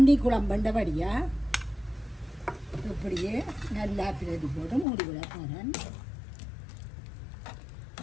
குழம்புண்டபடியாக இப்படியே நல்லா பிரதி போட்டு மூடி விட போகிறேன்.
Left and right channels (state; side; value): drops out; right; at 4.9 s